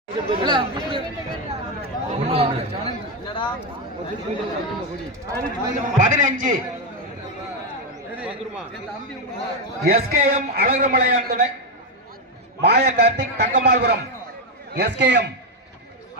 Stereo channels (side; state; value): both; normal; correlation 0.06